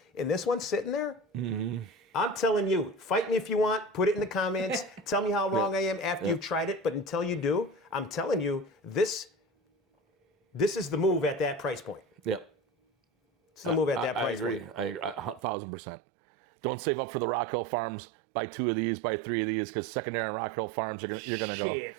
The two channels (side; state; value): left; drops out; at 15.4 s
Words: and this one's sitting there, I'm telling you, fight me if you want, put it in the comments, tell me how wrong I am after you've tried it, but until you do, I'm telling you, this is the move at that price point. Yep. It's the move at that price I agree. point. I agree. 1,000%. Don't save up for the Rock Hill Farms. Buy 2 of these, buy 3 of these, because secondary and Rock Hill Farms, you're gonna go. Shit,